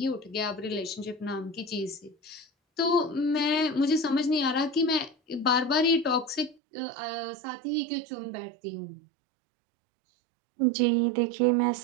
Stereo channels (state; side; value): drops out; left; at 6.6 s